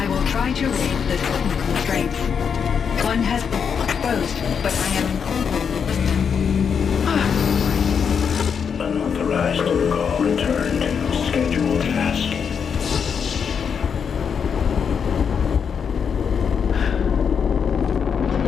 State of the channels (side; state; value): right; quieter; 6.8 dB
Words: will try to raid the technical strength. One has been exposed, but I am... Unauthorized call returned. Scheduled task.